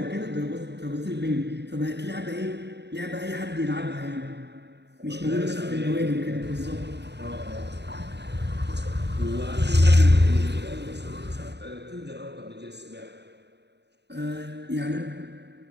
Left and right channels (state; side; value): late; left; 0.50 ms